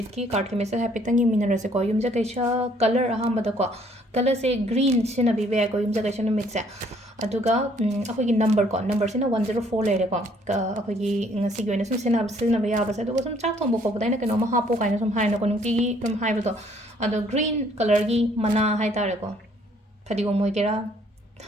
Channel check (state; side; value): normal; both; correlation 0.63